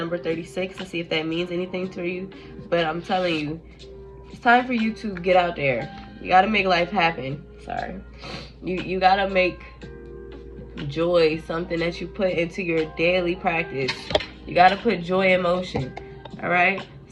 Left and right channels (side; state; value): both; identical; correlation 1.00